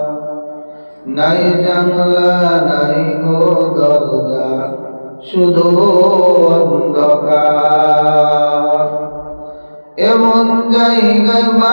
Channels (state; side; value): inverted; both; correlation -1.00